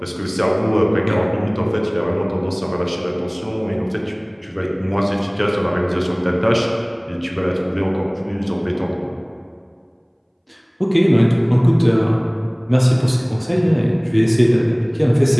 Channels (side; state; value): both; identical; correlation 1.00